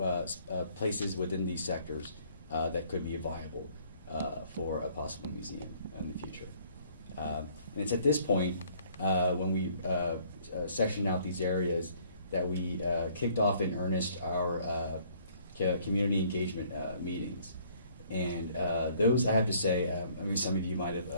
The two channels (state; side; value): inverted; both; correlation -0.61